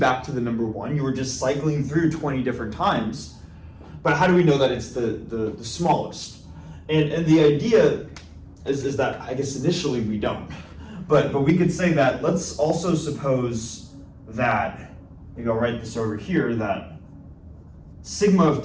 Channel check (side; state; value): both; identical; correlation 1.00